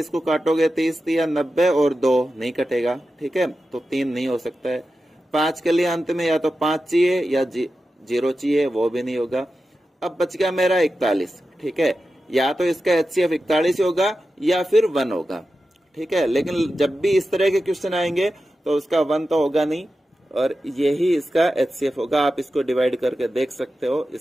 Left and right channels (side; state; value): both; normal; correlation 0.92